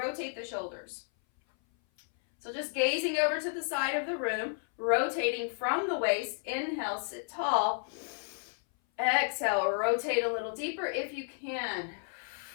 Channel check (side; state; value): right; silent; 56 dB below the other